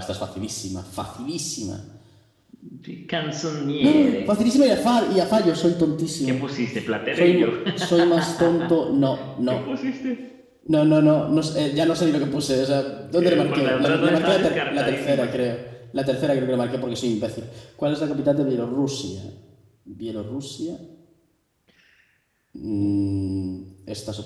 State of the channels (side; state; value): both; identical; correlation 1.00